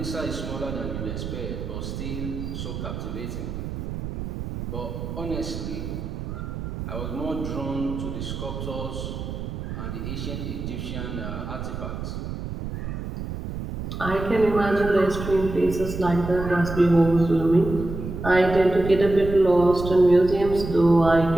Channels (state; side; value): noise; right; rumble, 7 dB below the sound